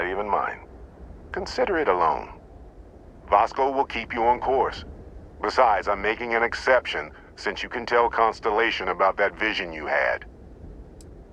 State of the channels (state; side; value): identical; both; correlation 1.00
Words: even mine. Consider it a loan. Vasco will keep you on course. Besides, I'm making an exception since you can tell Constellation about that vision you had.